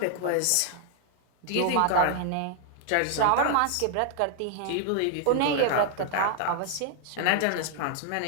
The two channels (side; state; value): both; different; correlation -0.01